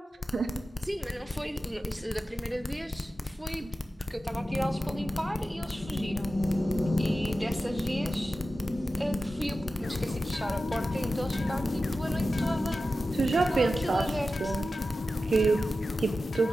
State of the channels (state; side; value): normal; both; correlation 0.93